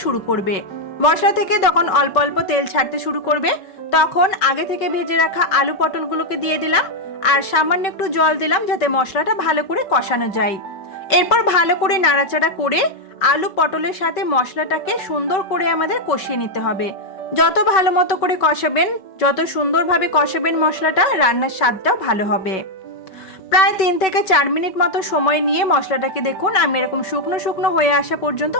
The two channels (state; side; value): late; right; 5.3 ms